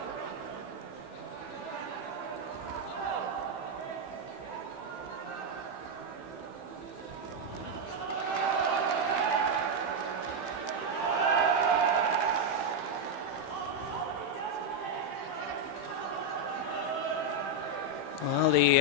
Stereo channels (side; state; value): right; late; 15 ms